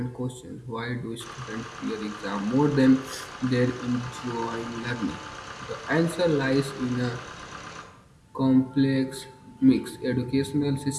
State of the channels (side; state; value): both; identical; correlation 1.00